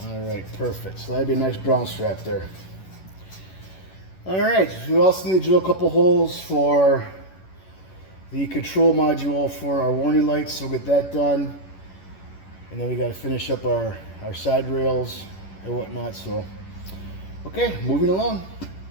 Alright, perfect. So that'd be a nice ground strap there. Alright, we also need to drill a couple holes for the control module for our warning lights, so we'll get that done. And then we got to finish up our side rails and whatnot. So, okay, moving along.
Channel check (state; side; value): late; right; 11 ms